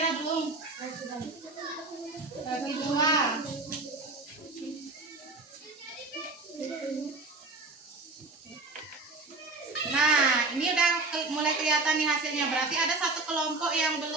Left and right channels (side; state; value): left; quieter; 3.3 dB